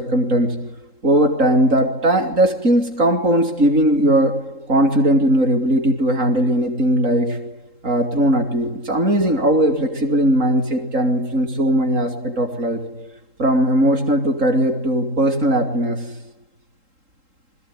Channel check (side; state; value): left; late; 3.8 ms